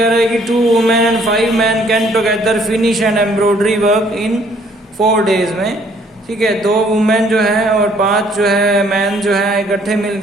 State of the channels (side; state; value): both; normal; correlation 0.62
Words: रहे हैं कि 2 women and 5 man can together finish and embroidery work in 4 days में. ठीक है, 2 वुमेन जो है और 5 जो है मैन जो है इकट्ठे